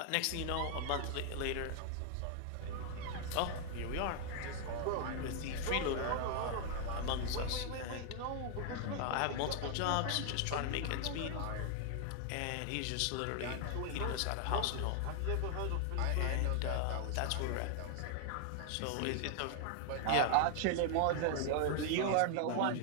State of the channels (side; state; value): both; different; correlation 0.00